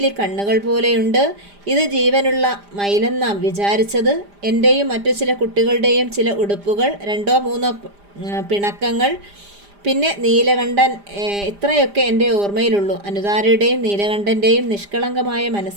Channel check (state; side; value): late; left; 5.0 ms